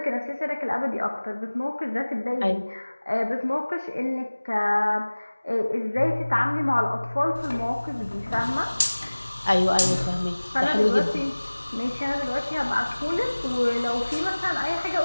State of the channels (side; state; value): both; inverted; correlation -1.00